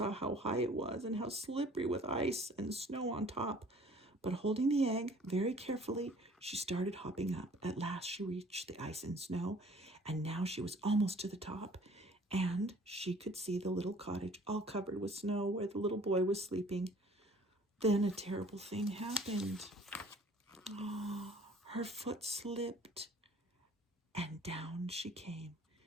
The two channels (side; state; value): both; normal; correlation 0.53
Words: how high it was and how slippery with ice and snow on top. But holding the egg very carefully, she started hopping up. At last she reached the ice and snow, and now she was almost to the top, and she could see the little cottage all covered with snow where the little boy was sleeping. Then a terrible thing happened. Her foot slipped, and down she came.